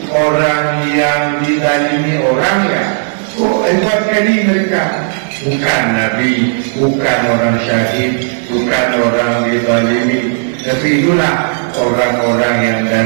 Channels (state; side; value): silent; left; digital silence